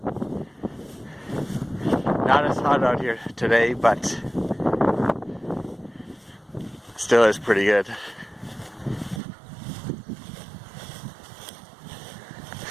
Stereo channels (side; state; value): left; drops out; at 9.2 s